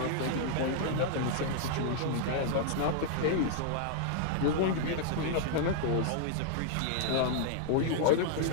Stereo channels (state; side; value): different; both; correlation -0.01